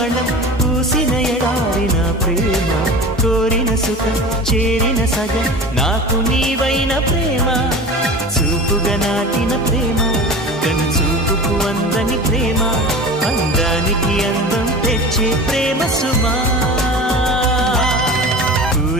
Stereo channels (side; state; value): both; normal; correlation 0.34